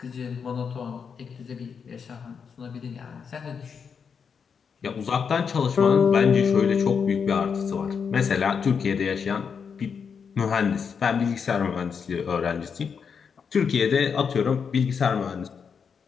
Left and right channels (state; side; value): quieter; right; 6.4 dB